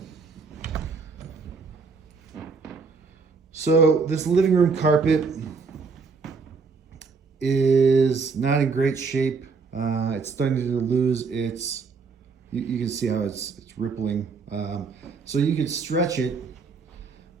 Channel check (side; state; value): left; quieter; 4.8 dB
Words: So this living room carpet is not in great shape. It's starting to lose its, you can see how it's rippling. So you could stretch it,